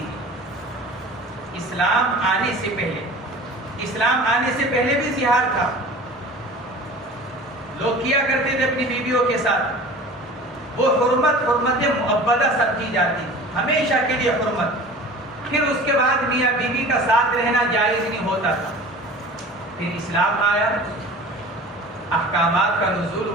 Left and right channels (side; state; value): both; normal; correlation 0.40